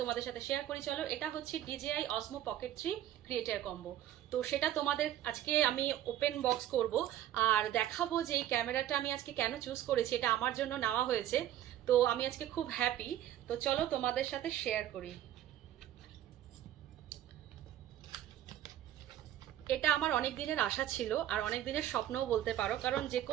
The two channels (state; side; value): quieter; left; 12.1 dB